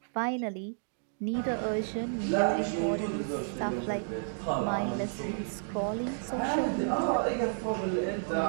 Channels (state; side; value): silent; left; digital silence